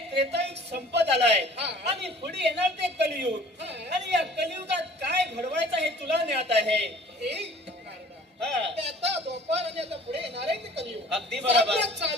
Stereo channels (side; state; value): both; normal; correlation 0.49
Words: त्रेतायुग संपत आलाय आणि पुढे येणार ते कलियुग. आणि या कलियुगात काय घडवायचं हे तुला ज्ञात आहे. हे नारदा, आता द्वापार आणि आता पुढे येणार आहे ते कलियुग. अगदी बरोबर.